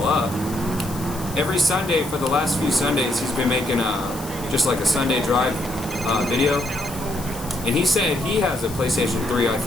up. Every Sunday for the last few Sundays, he's been making just like a Sunday drive video. And he said he has a PlayStation 3, I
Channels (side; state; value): left; noise; hiss, 14 dB below the sound